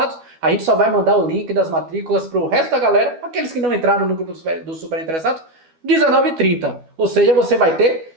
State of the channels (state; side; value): late; left; 12 ms